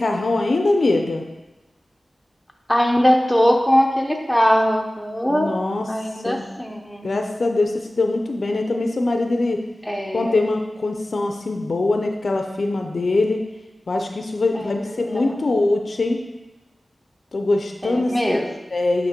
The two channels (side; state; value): both; normal; correlation 0.97